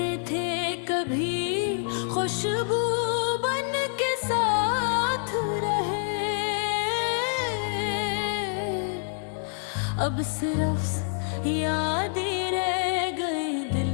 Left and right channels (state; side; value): silent; right; digital silence